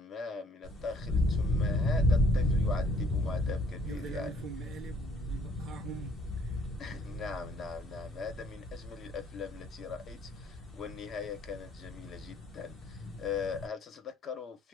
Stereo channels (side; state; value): both; normal; correlation 0.62